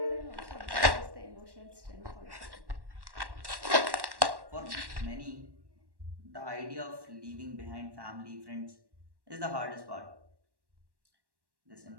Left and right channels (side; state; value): left; late; 1.1 ms